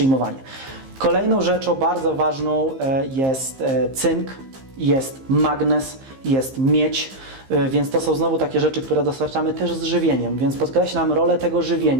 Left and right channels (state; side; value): late; left; 15 ms